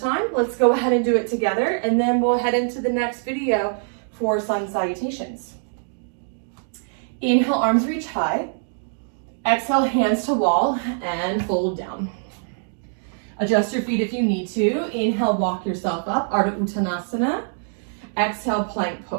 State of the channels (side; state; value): left; silent; digital silence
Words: let's go ahead and do it together, and then we'll head into the next video for sun salutations. Inhale, arms reach high. Exhale, hands to wall and fold down. Adjust your feet if you need to. Inhale, walk yourself up, Ardha Uttanasana. Exhale, plank